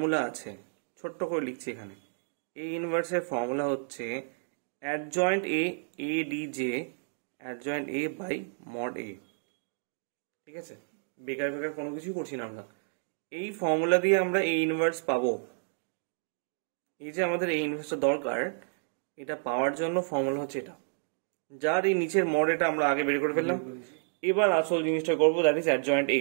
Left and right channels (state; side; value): silent; left; digital silence